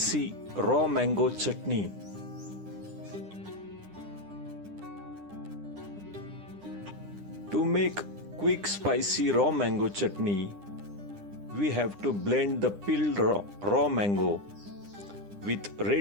raw mango chutney. To make quick spicy raw mango chutney, we have to blend the peeled raw mango with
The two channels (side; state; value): left; late; 9.9 ms